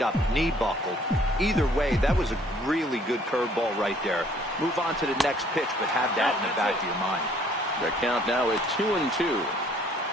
knee buckled. Either way, that was a really good curveball right there. Move on to the next pitch, but have that in the back of your mind. The count now at 2-2.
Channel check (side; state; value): both; normal; correlation 0.60